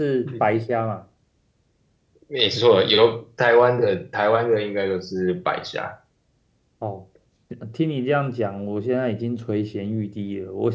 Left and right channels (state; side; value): identical; both; correlation 1.00